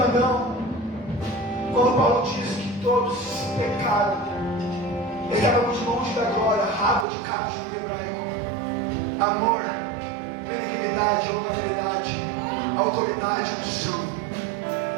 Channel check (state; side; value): drops out; left; at 7.1 s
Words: quando Paulo diz que todos pecaram, estávamos longe da glória, rabo de cabo de hebraico, amor, benignidade, honorabilidade, autoridade, unção.